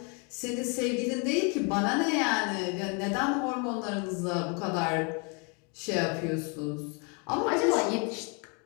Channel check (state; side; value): quieter; right; 34.4 dB